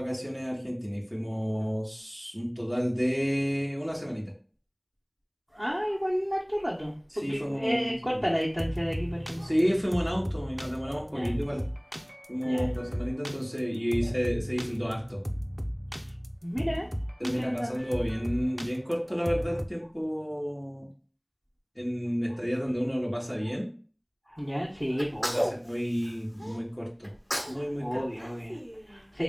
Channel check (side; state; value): both; identical; correlation 1.00